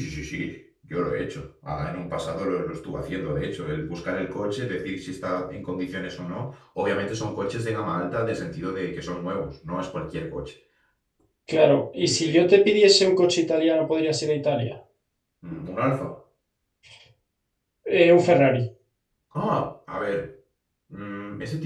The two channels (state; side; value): identical; both; correlation 1.00